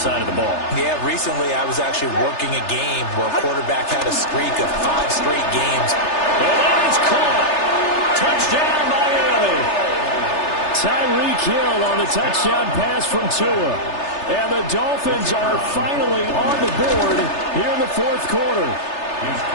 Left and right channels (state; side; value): late; right; 3.3 ms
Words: of the ball. Yeah, recently I was actually working a game where a quarterback had a streak of 5 straight games. And that is caught. Touchdown, Miami. Tyreek Hill on the touchdown pass from Tua. And the Dolphins are finally on the board here in the 4th quarter.